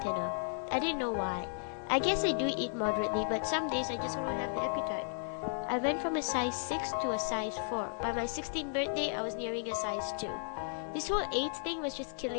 thinner. I didn't know why. I guess I do eat moderately, but some days I just don't have the appetite. I went from a size 6 to a size 4. By my 16th birthday, I was nearing a size 2. This whole AIDS thing was just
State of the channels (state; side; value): silent; right; digital silence